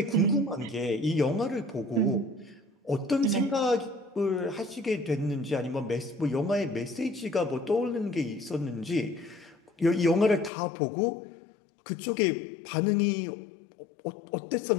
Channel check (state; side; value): drops out; right; at 10.5 s